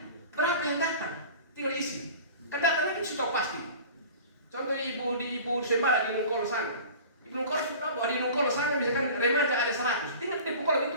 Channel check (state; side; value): inverted; both; correlation -0.40